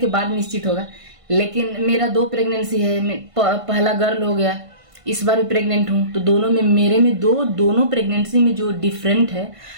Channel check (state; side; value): late; left; 1.5 ms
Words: बाद निश्चित होगा। लेकिन मेरा 2 प्रेगनेंसी है, पहला गर्ल हो गया, इस बार भी प्रेग्नेंट हूँ, तो दोनों में मेरे में दोनों प्रेगनेंसी में जो डिफरेंट है